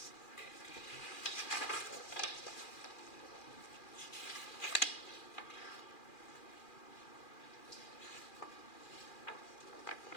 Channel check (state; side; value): late; right; 2.4 ms